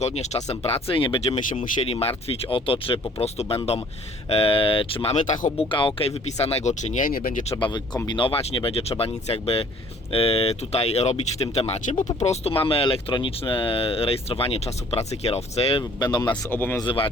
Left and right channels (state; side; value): normal; both; correlation 0.56